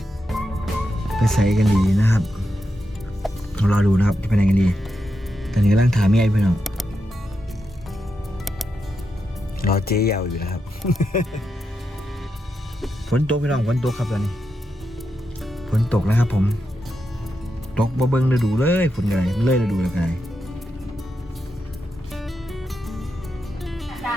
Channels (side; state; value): both; normal; correlation 0.86